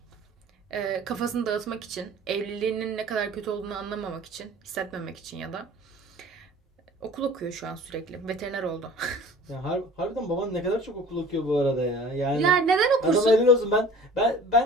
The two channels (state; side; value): normal; both; correlation 0.44